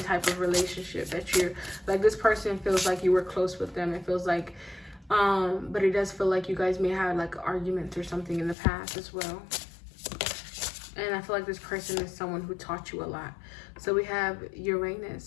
of relationship that you're, like this person feels like you were close with them. It feels like, but it does feel like you guys may have like arguments or something in the past as well. And I feel like this person is someone who taught you a lot. So we have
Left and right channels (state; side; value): drops out; right; at 8.6 s